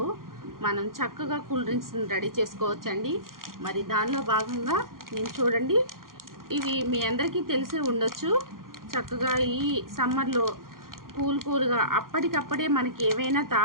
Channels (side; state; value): left; late; 0.91 ms